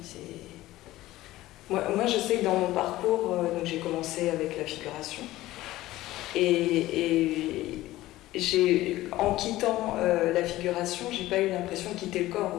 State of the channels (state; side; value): quieter; right; 16.5 dB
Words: Moi, je sais que dans mon parcours, j'ai commencé avec la figuration. Et en quittant la figuration, j'ai pas eu l'impression de quitter le corps.